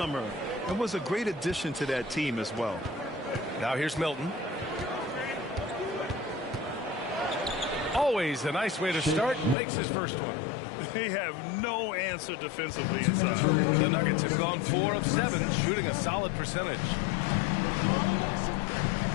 and was a great addition to that team as well. Now here's Milton. Always a nice way to start. Makes his first one. They have no answer defensively inside. The Nuggets have gone 4 of 7, shooting a solid percentage.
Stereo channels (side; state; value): right; drops out; at 9.6 s